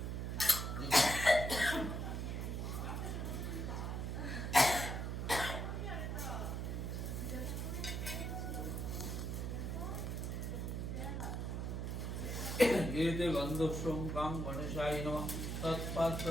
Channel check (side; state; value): right; noise; hum, 2 dB below the sound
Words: एते गन्धस्वं कां गणेशाय नमः